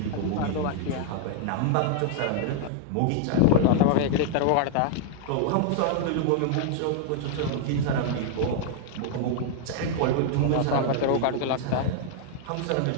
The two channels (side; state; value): both; different; correlation 0.00